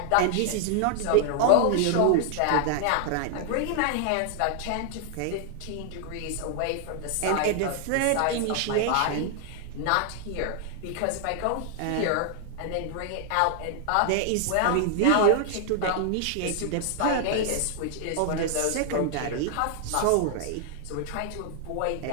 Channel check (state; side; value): different; both; correlation 0.00